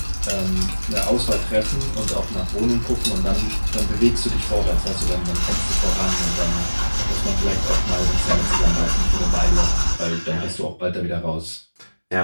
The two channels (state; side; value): inverted; both; correlation -1.00